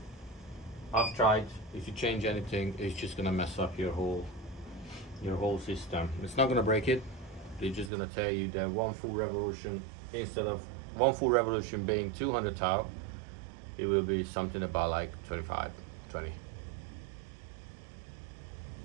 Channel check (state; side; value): drops out; left; at 7.9 s